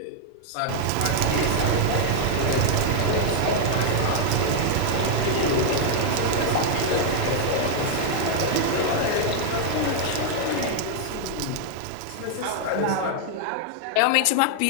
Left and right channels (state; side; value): different; both; correlation 0.00